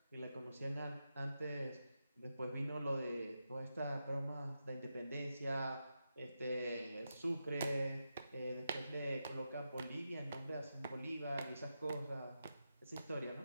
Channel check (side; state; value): both; inverted; correlation -0.88